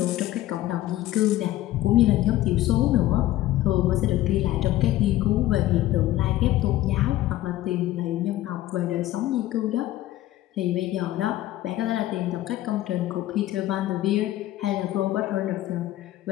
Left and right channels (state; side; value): quieter; right; 15.0 dB